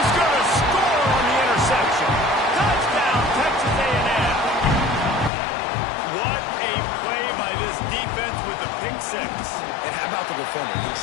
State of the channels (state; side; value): drops out; right; at 5.3 s